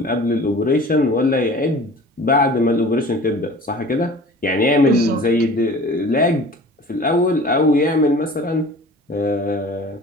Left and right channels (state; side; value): normal; both; correlation 0.43